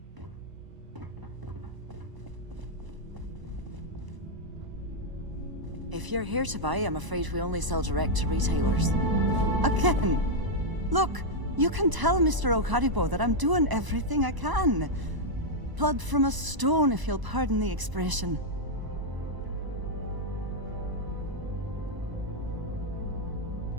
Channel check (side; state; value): left; late; 1.0 ms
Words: If you're here to buy, I'm afraid we only sell direct to retailers. Again! Look, you can tell Mr. Okaribo that I'm doing everything I can. Blood from a stone, if you'll pardon the expression.